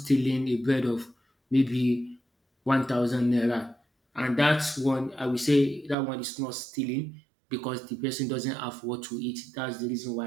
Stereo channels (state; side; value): drops out; left; at 6.0 s